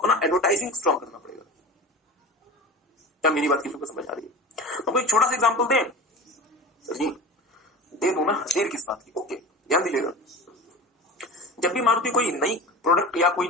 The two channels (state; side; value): normal; both; correlation 0.34